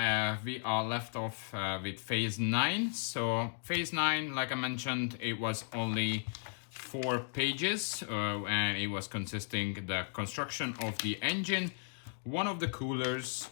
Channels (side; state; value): right; silent; digital silence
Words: we are left off with phase 9. So phase 9, like I mentioned, it was only 4 pages and it was consisting the construction of the engine, one of the coolers